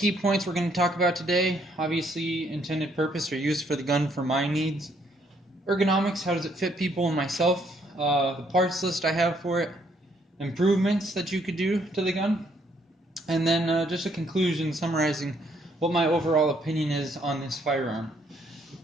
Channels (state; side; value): normal; both; correlation 0.69